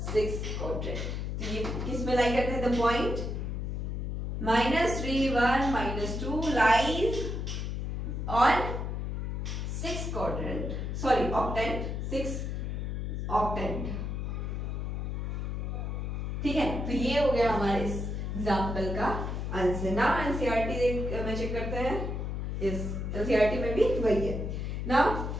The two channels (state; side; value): noise; left; hum, 3 dB below the sound